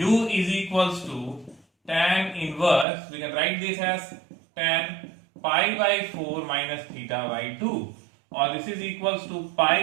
is equals to tan inverse. We can write this as tan pi by 4 minus theta by 2, or this is equals to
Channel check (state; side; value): drops out; left; at 2.9 s